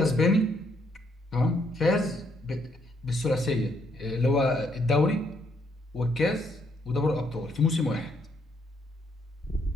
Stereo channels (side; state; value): both; normal; correlation 0.72